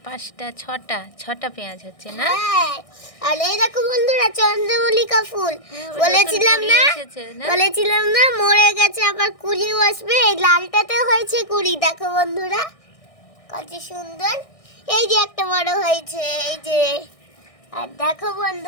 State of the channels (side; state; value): right; late; 1.6 ms